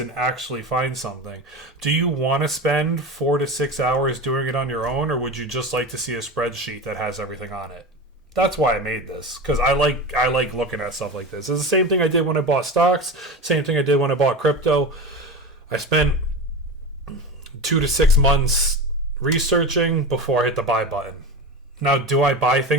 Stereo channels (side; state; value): both; normal; correlation 0.26